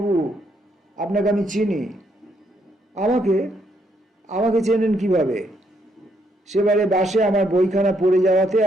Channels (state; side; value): normal; both; correlation 0.74